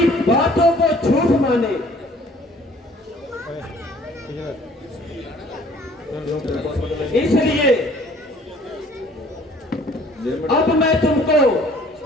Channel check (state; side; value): normal; both; correlation 0.55